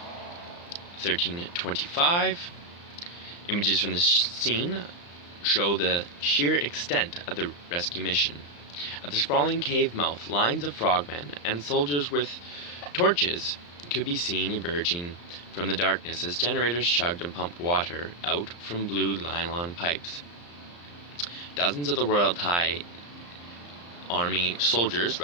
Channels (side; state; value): right; late; 35 ms